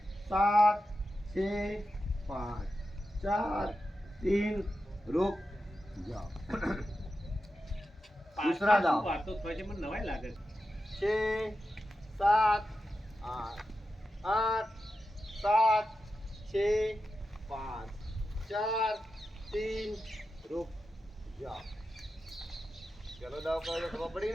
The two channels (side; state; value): both; normal; correlation 0.90